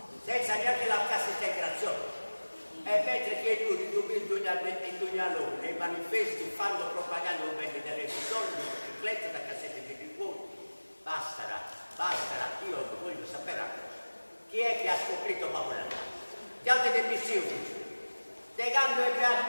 senza neanche la cassa integrazione. E mentre che lui in loro nei manifesti fanno propaganda un bene delle persone, di biciclette, da cassette di ricordo, basterà, io voglio sapere una cosa. Chi è che ha scoperto Paola? Gli altri del missioni. Legando il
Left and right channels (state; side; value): inverted; both; correlation -1.00